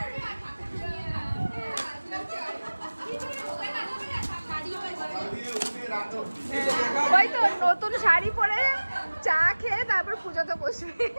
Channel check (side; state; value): both; inverted; correlation -1.00